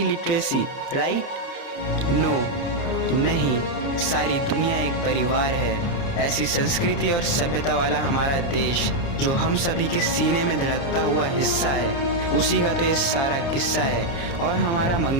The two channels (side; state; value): right; late; 29 ms